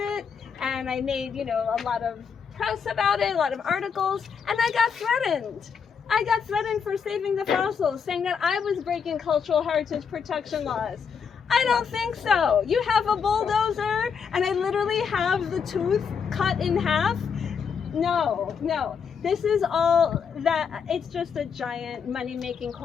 and I made a lot of press about it, a lot of articles, and I got threatened. I got threatened for saving the fossils, saying that I was breaking cultural heritage protection laws. I don't think so. You have a bulldozer and I literally have the tooth cut in half? No. This is all that, it's just a giant money-making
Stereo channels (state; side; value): quieter; right; 6.5 dB